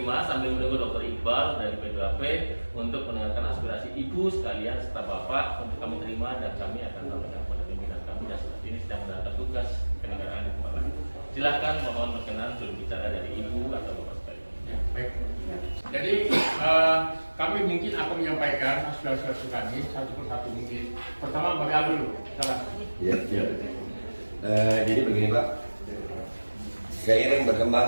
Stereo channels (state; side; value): inverted; both; correlation -1.00